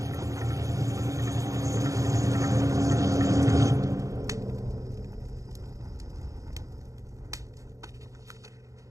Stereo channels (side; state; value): left; late; 0.16 ms